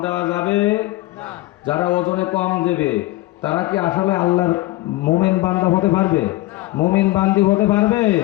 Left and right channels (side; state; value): right; quieter; 18.8 dB